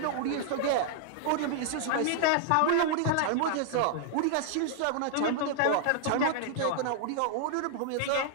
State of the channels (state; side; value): different; both; correlation -0.01